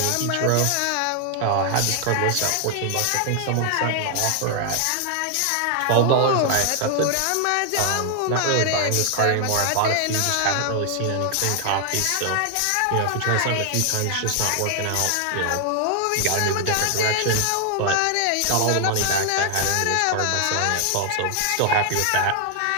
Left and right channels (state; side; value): different; both; correlation 0.00